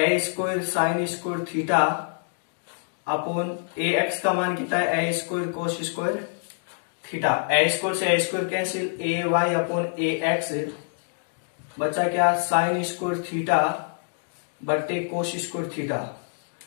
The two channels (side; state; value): right; silent; digital silence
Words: square sine square theta upon a x का मान कितना है, a square cos square theta. A square से a square cancel, a y upon a x बचा क्या, साइन स्क्वायर थीटा बट्टे कोस स्क्वायर थीटा।